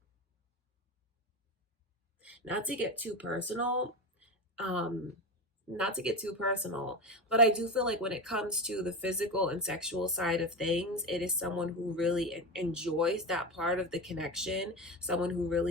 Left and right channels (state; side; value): normal; both; correlation 0.21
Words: not to get too personal, um, not to get too personal, but I do feel like when it comes to the physical and sexual side of things, it is someone who really enjoys that part of the connection, someone who